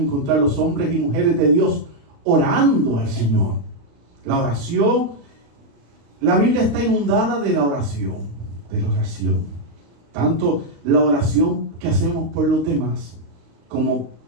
los hombres y mujeres de Dios orando al Señor. La oración, la Biblia está inundada de la oración. Tanto la oración que hacemos por los demás, como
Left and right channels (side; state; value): left; late; 35 ms